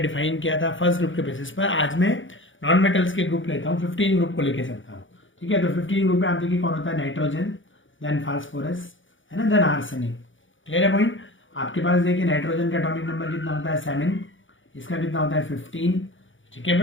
किया था फर्स्ट ग्रुप के बेसिस पर, आज मैं नॉन मेटल्स के ग्रुप लेता हूँ, 15 ग्रुप को लेके चलता हूँ। ठीक है? तो 15 ग्रुप में आप देखिए कौन होता है? नाइट्रोजन, देन फास्फोरस, है ना, देन आर्सेनिक। क्लियर है पॉइंट? आपके पास देखिए नाइट्रोजन का एटॉमिक नंबर कितना होता है? 7। इसका कितना होता है? 15। ठीक है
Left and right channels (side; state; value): right; late; 0.56 ms